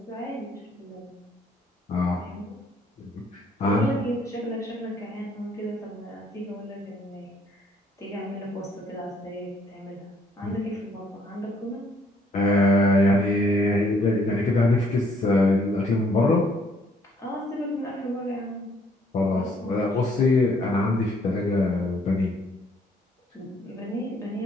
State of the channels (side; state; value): both; normal; correlation 0.65